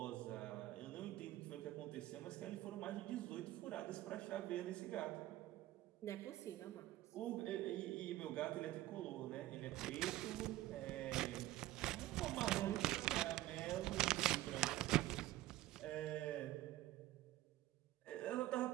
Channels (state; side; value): quieter; left; 15.8 dB